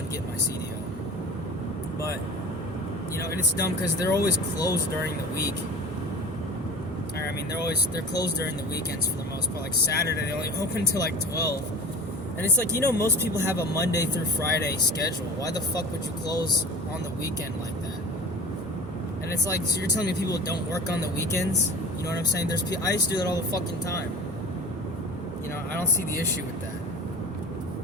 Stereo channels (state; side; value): normal; both; correlation 0.38